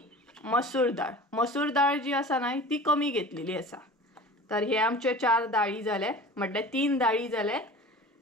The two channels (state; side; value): normal; both; correlation 0.39